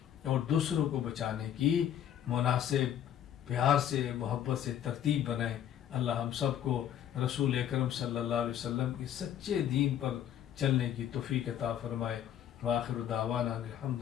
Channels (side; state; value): right; quieter; 10.2 dB